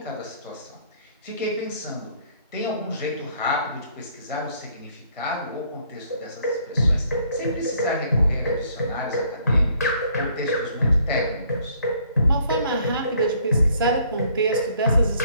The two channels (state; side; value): inverted; both; correlation -0.63